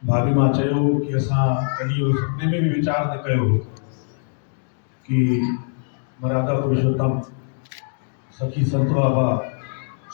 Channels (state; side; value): silent; right; digital silence